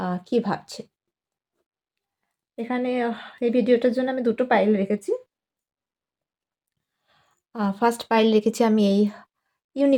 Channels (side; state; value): both; identical; correlation 1.00